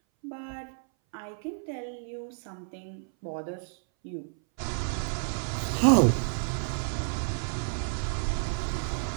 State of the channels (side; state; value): left; silent; 58 dB below the other